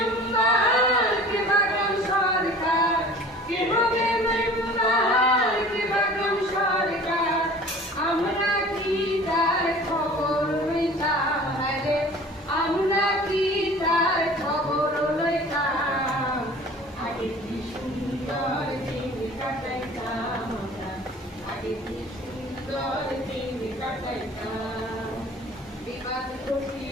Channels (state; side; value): normal; both; correlation 0.45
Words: কে বা গ্রাম সরকার, কে হবে মেম্বার, কে বা গ্রাম সরকার, আমরা কি তার খবর লইতাম রে, আমরা কি তার খবর লইতাম, আগে কি সুন্দর দিন কাটাইতাম আমরা, আগে কি সুন্দর দিন কাটাইতাম। বিবাদ